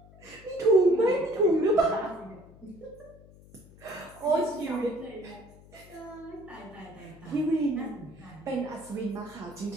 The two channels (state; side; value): noise; left; hum, 22 dB below the sound